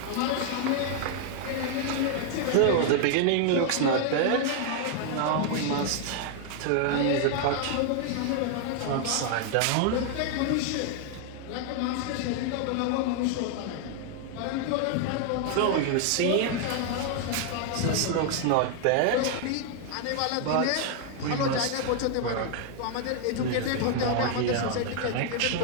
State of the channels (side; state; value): both; different; correlation 0.00